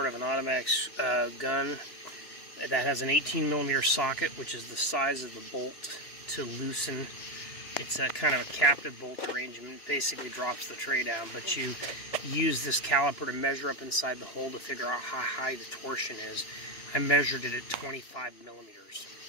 of an automatic gun that has an 18mm socket, which is the size of the bolt to loosen. It's a kind of a captive bolt arrangement. It basically drops the tray down, but you use this caliper to measure up inside the hole to figure out how high the torsion is. I measured it at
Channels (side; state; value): right; late; 2.9 ms